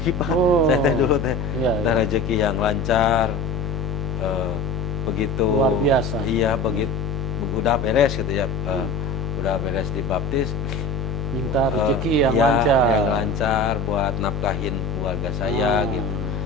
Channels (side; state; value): left; noise; hum, 4 dB below the sound